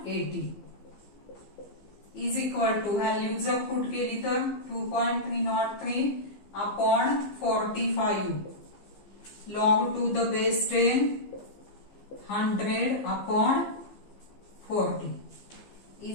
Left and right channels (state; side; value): late; right; 15 ms